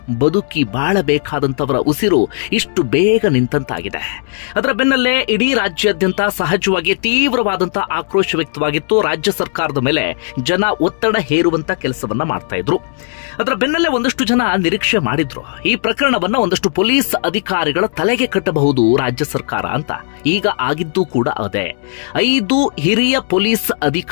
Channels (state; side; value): silent; right; digital silence